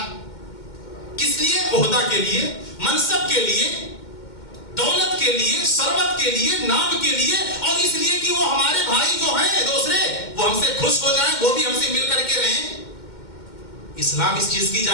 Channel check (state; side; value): late; right; 2.1 ms